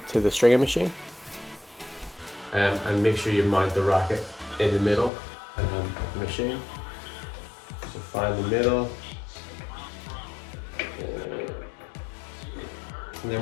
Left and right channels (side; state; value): right; drops out; at 5.1 s